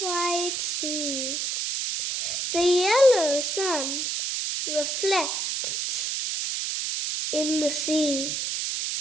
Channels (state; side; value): noise; right; hiss, 1 dB below the sound